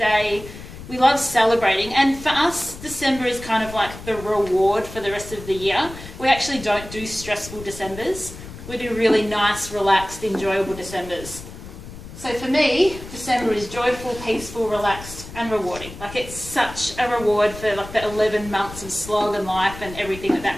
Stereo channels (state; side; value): noise; left; rumble, 14 dB below the sound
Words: We love celebrating. And for us, December is kind of like the reward for the rest of the year. We actually don't do stressful Decembers. We do really nice, relaxed, enjoyable Decembers. So for me, December is joyful, peaceful, relaxed and rewarding. Like, it's such a reward for like the 11 months of slog and life and everything